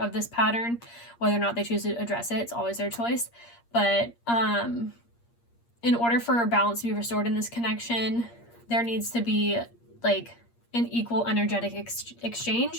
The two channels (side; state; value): right; late; 8.6 ms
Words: this pattern. Whether or not they choose to address it, it's always their choice. But in order for balance to be restored in this connection, there needs to be like an equal energetic